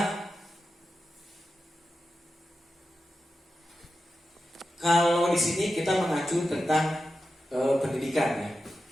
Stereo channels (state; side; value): normal; both; correlation 0.91